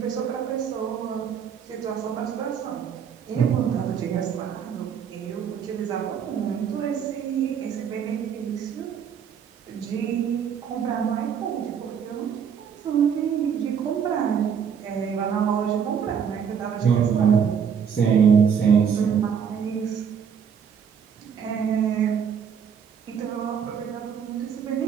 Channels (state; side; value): quieter; left; 7.5 dB